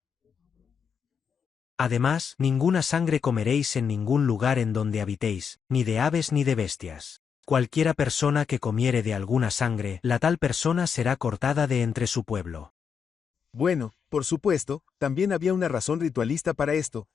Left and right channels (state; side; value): quieter; right; 6.7 dB